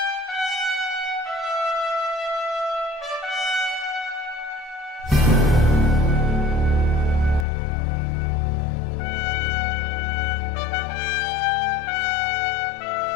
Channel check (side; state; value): right; drops out; at 7.5 s